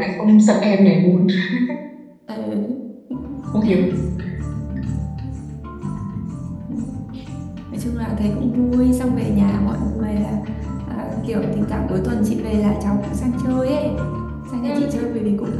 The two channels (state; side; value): identical; both; correlation 1.00